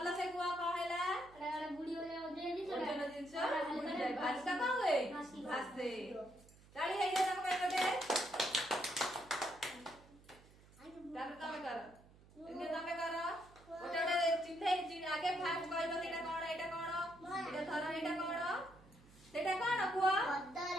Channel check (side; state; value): right; noise; hum, 24 dB below the sound